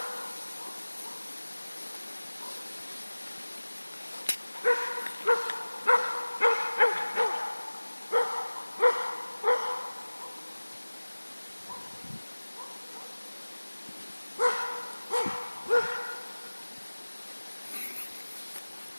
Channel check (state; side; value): inverted; both; correlation -1.00